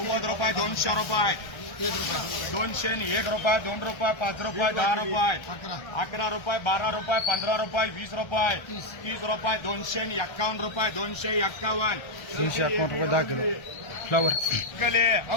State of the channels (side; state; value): right; late; 1.3 ms